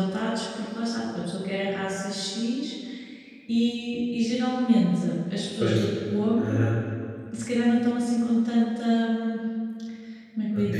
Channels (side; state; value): both; identical; correlation 1.00